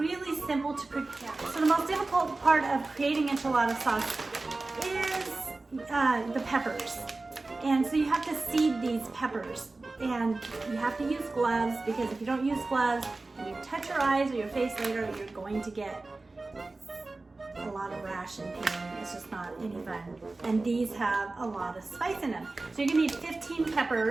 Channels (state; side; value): quieter; left; 3.3 dB